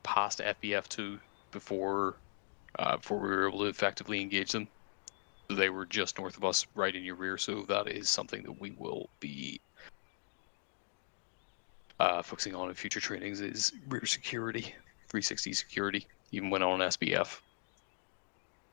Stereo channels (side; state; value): right; silent; digital silence